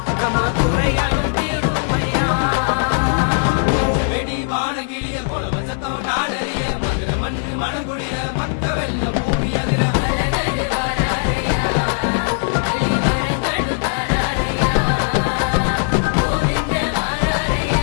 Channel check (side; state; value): right; silent; digital silence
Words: நம்ம குறைகளும் தீருமையா வானகிளிய போல வசத்தம் நாடறிய மனக்குடிய மற்ற வெள்ளம்